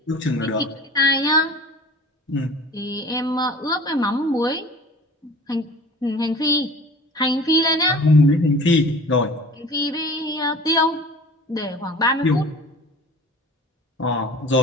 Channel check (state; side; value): normal; both; correlation 0.42